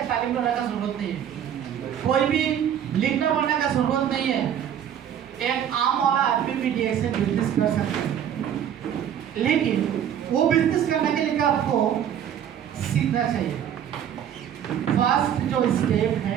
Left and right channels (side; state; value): left; quieter; 9.5 dB